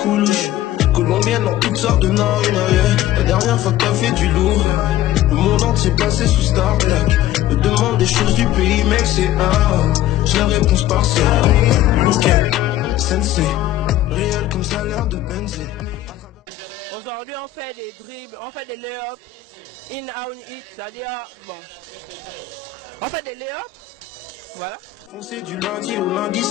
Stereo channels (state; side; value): quieter; right; 12.9 dB